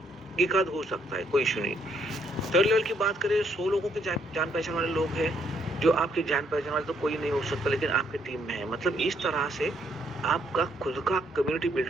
एक आध हो सकता है, कोई इशू नहीं। थर्ड लेवल की बात करें, 100 लोगों के जान पहचान वाले लोग हैं, जो आपके जान पहचान वाले तो कोई नहीं हो सकता, लेकिन आपके टीम में है। मतलब इस तरह से आपका खुद का कम्युनिटी बिल्ड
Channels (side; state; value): both; normal; correlation 0.71